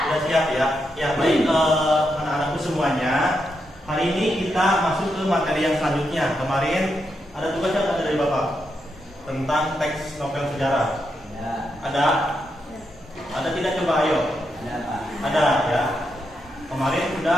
Sudah siap ya? Ya baik, anak-anakku semuanya. Hari ini kita masuk ke materi yang selanjutnya. Kemarin ada tugas yang ada dari Bapak tentang teks novel sejarah. Ada? Ada tidak, coba ayo? Ada ya. Kemarin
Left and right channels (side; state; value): both; normal; correlation 0.83